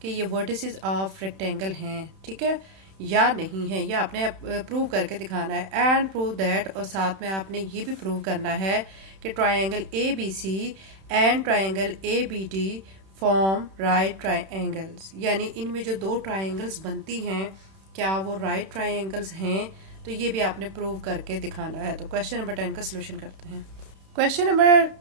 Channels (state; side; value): late; left; 31 ms